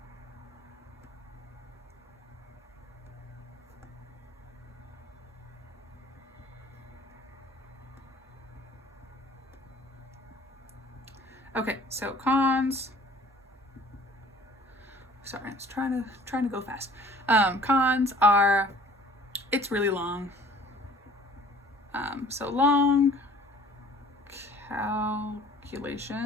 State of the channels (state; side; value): normal; both; correlation 0.51